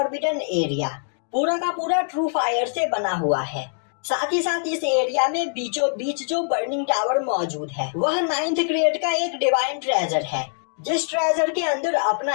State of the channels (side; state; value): right; silent; digital silence